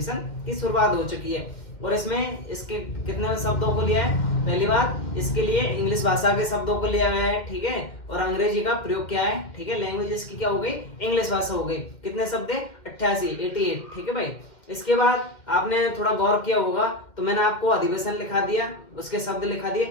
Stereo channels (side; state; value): right; late; 2.1 ms